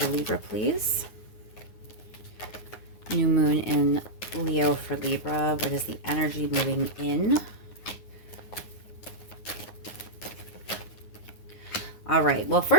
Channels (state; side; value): late; right; 9.6 ms